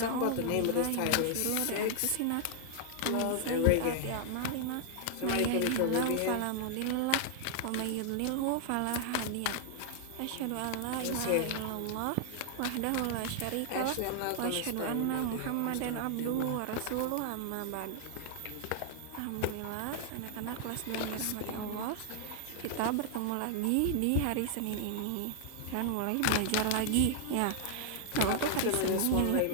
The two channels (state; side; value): different; both; correlation -0.01